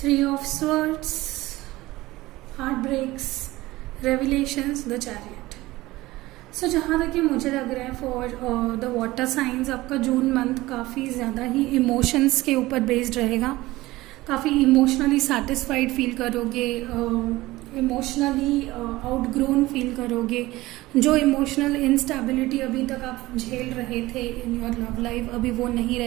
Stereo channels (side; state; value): left; quieter; 18.6 dB